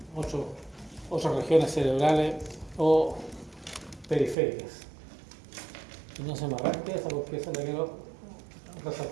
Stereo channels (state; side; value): drops out; left; at 4.4 s